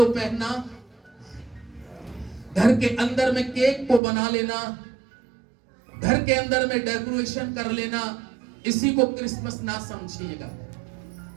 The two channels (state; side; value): drops out; left; at 4.0 s